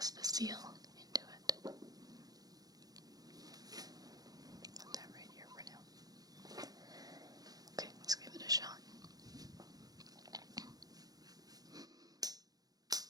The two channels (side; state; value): left; late; 0.18 ms